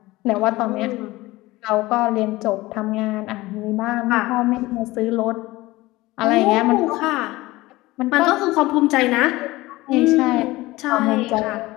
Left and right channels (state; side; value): quieter; right; 19.4 dB